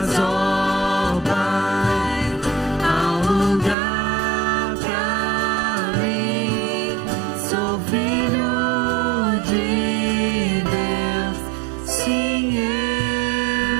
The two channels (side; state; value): left; drops out; at 3.8 s